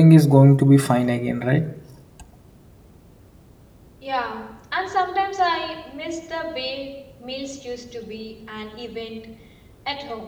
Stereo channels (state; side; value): identical; both; correlation 1.00